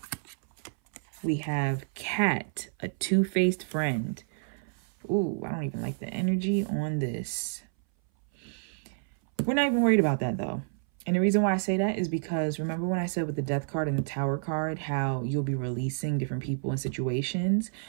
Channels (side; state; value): left; silent; 58 dB below the other